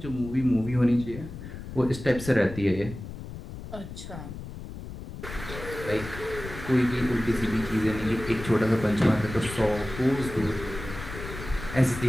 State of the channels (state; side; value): noise; left; rumble, 11 dB below the sound